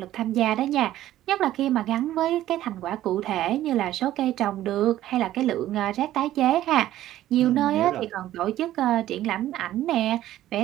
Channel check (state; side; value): quieter; left; 13.6 dB